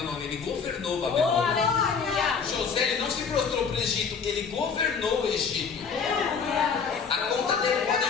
ele governou Babilônia. José, ele não se prostrou para o Egito, ele governou o Egito. A conta dele pode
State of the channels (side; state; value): right; quieter; 5.9 dB